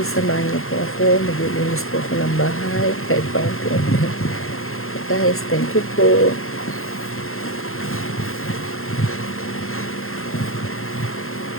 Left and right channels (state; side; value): late; right; 0.62 ms